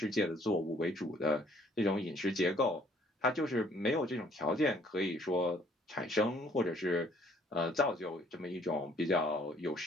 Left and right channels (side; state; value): both; normal; correlation 0.61